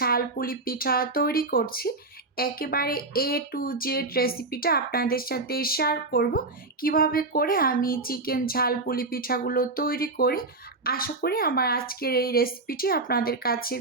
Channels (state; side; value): quieter; left; 3.3 dB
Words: পুলি পিঠা তৈরি করছি। একেবারে এ টু জেড রেসিপিটা আপনাদের সাথে শেয়ার করব, কিভাবে করে আমি চিকেন ঝাল পুলি পিঠাগুলো তৈরি করি। আশা করি আমার আজকের এই রেসিপিটি আপনাদের কাছে